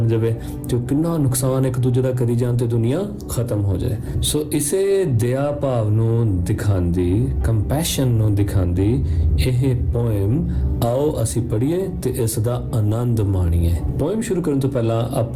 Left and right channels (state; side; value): identical; both; correlation 1.00